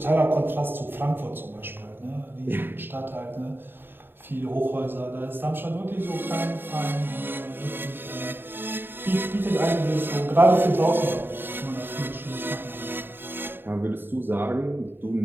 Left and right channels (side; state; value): left; late; 0.099 ms